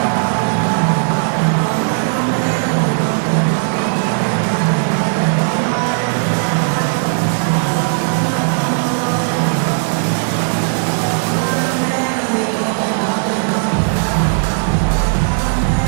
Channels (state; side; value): silent; left; 63 dB below the other